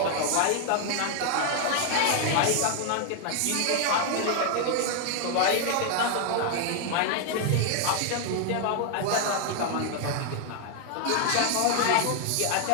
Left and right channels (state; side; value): different; both; correlation 0.00